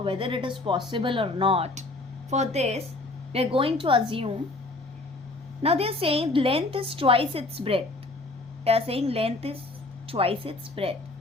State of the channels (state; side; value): quieter; right; 3.0 dB